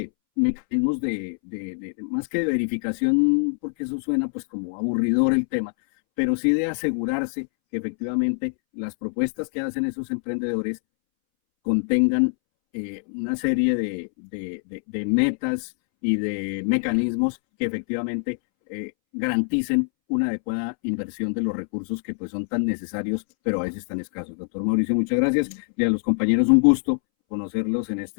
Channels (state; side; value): silent; right; 62 dB below the other